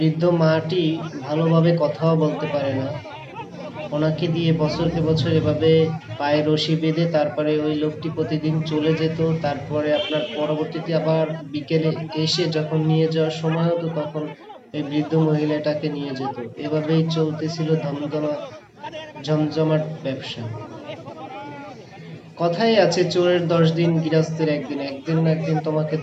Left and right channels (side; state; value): both; identical; correlation 1.00